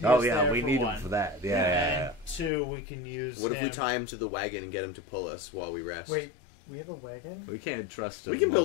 Oh us yeah, there we for need one. him for that. Yeah. And two, we can use. What if we him- tie him to the wagon and get him to pull us while we rest? Wait, we have a wagon? We can't trust him. We can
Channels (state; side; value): drops out; right; at 2.5 s